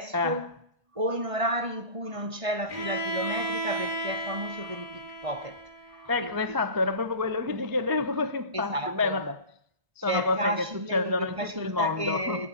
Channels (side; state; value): left; late; 1.5 ms